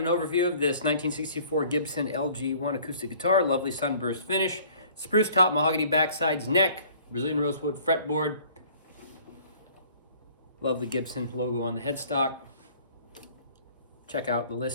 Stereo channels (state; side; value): inverted; both; correlation -0.54